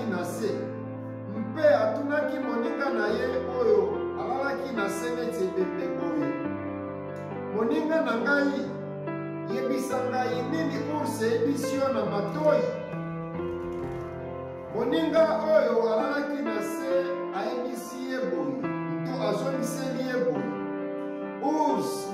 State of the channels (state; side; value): identical; both; correlation 1.00